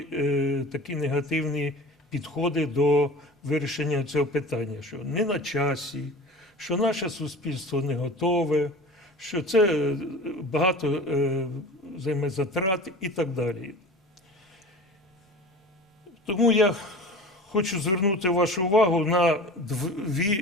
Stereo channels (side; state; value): both; normal; correlation 0.37